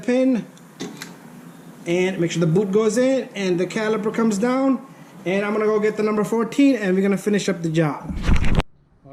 and make sure the boot goes in and the caliper comes down. And I'm gonna go get the number 14, and we're gonna finish up the job.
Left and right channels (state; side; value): identical; both; correlation 1.00